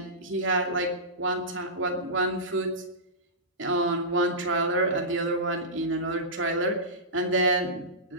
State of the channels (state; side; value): normal; both; correlation -0.19